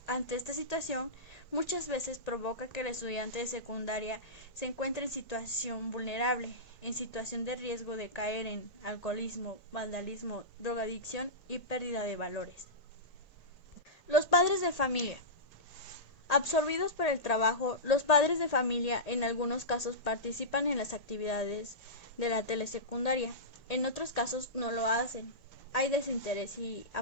Ante esta situación, muchas veces provoca que el estudiante de secundaria se encuentre en situación vulnerable, en situación de riesgo de caer en alcoholismo, vandalismo, drogadicción y pérdida de valores. Los padres de familia. Absorbidos por el trabajo, los padres de familia en algunos casos participan en las actividades de la telesecundaria, en otros casos no lo hacen. Hay desinterés y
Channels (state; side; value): late; right; 1.8 ms